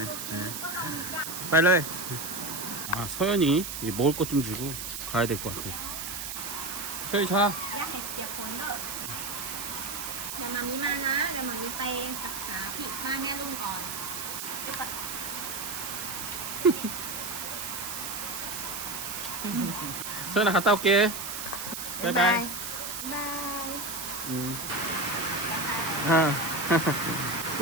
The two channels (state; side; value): noise; right; hiss, 6 dB below the sound